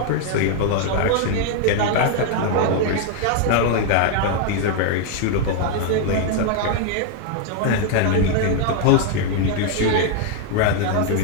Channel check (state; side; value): different; both; correlation 0.00